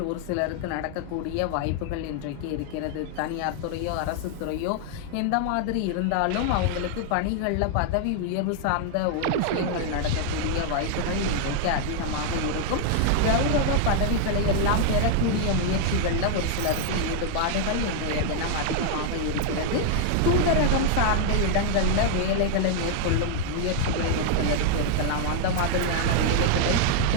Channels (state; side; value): different; both; correlation 0.00